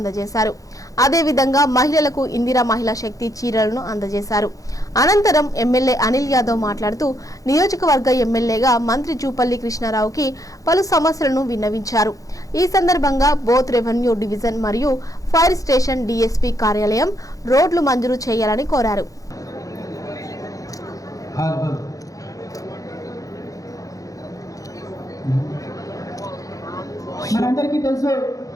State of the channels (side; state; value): right; late; 0.17 ms